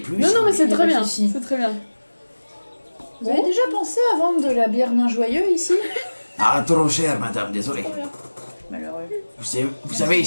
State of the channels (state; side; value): inverted; both; correlation -1.00